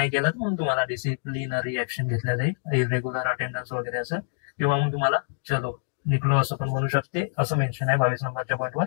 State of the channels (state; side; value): silent; right; digital silence